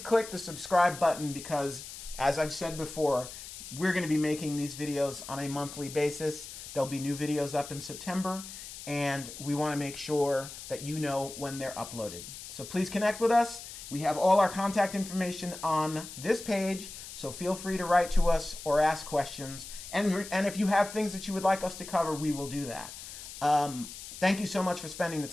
the subscribe button because, as I've said before, we're going to be making these videos on a monthly basis. There'll be new videos up in September, and we want to make sure that you know when they're uploaded. So please connect with us. We have all our contact information on this page, so feel free to write to us or ask questions. And if you have things that you would like us to cover, we will do that. Thank you so much for spending the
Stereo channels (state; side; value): noise; left; hiss, 12 dB below the sound